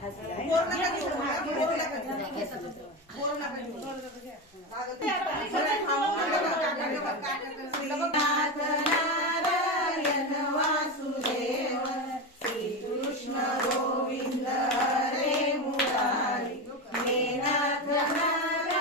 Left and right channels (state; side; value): normal; both; correlation 0.18